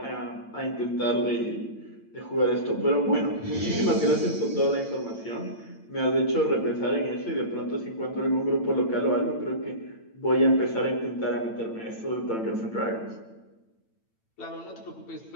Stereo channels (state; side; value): late; right; 8.9 ms